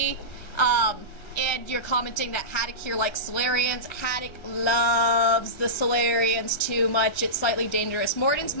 And you're commenting that Haddock here likes Solarians. Haddock loves the Solarians too much. It's slightly dangerous. Morden's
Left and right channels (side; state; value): right; late; 1.4 ms